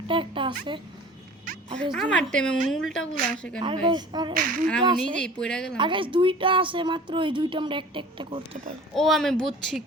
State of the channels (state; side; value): normal; both; correlation 0.43